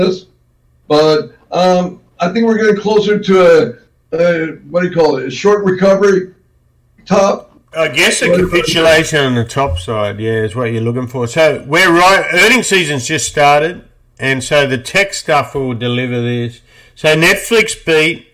But I think we're getting closer to what do you call it? A short recovery top. I guess a capitulation on the top side, yeah, is what you're looking for. So we're right. Earnings season's just started, and so the tech stuff will deliver this. So Netflix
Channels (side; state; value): both; identical; correlation 1.00